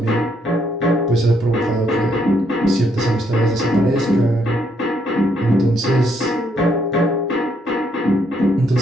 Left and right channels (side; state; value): both; normal; correlation 0.73